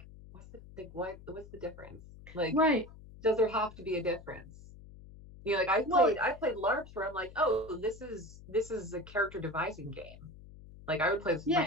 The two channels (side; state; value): left; noise; hum, 18 dB below the sound